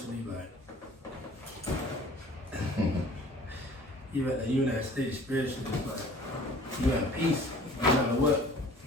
like you in that state spiritually, it's like you at peace, no matter what.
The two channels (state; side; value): normal; both; correlation 0.48